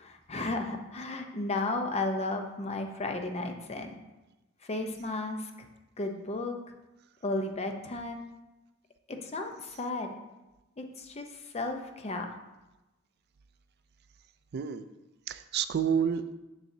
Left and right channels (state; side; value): normal; both; correlation 0.29